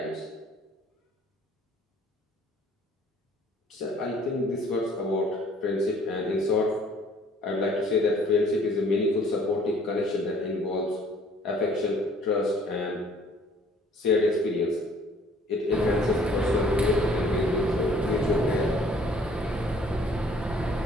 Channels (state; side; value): normal; both; correlation 0.57